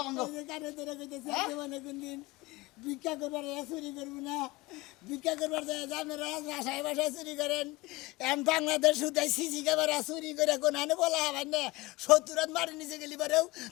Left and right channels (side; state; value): right; quieter; 21.5 dB